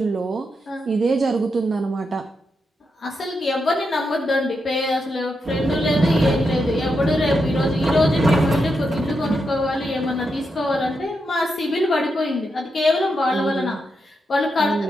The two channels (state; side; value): normal; both; correlation 0.84